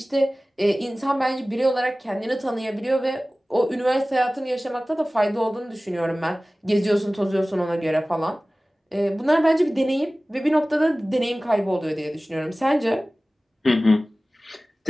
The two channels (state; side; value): normal; both; correlation 0.97